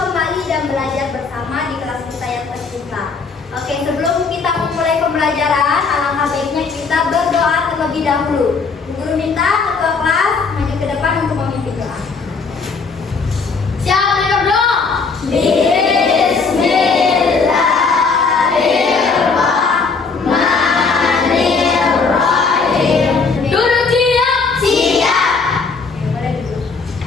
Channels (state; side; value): quieter; right; 4.7 dB